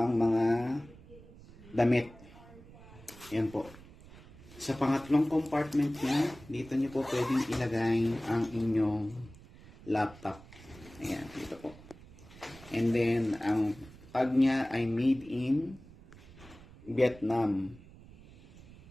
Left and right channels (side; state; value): right; noise; rumble, 20 dB below the sound